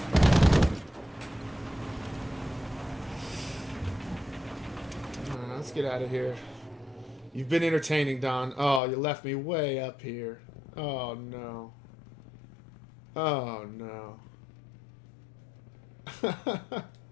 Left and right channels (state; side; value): drops out; right; at 8.8 s